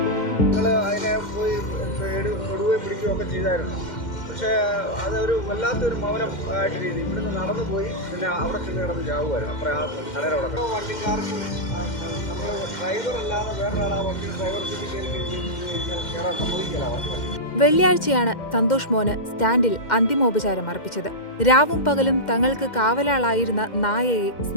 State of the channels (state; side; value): late; right; 2.1 ms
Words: പക്ഷേ അതൊരു വല്ലാത്തൊരു മൗനം ആയിട്ട് രീതി ഇവിടുന്ന് നടന്നു പോയി പിന്നെ അവിടെ ചെന്ന് കിടന്ന് ചാവുമായിരുന്നു. അപ്പുറം ആ കടയുടെ വണ്ടിക്കാർക്ക് നമ്മൾ ഡ്രൈവർ അല്ലാതെ വേറൊരാൾ ആ വണ്ടി ഡ്രൈവർ സീറ്റിൽ കയറാൻ സമ്മതിക്കില്ല. വെള്ളിയാഴ്ചയാണ് സന്തോഷ് മോന് സ്റ്റാൻഡിൽ അന്തിമോപചാരം അർപ്പിച്ചത്. രാവും പകലും തങ്ങൾക്ക് കാവലാളായിരുന്ന നായയെ